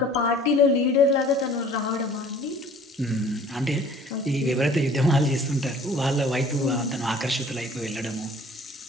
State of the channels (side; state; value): both; normal; correlation 0.51